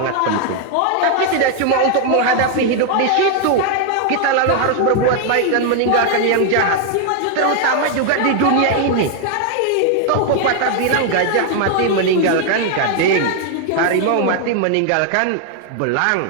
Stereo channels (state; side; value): different; both; correlation 0.00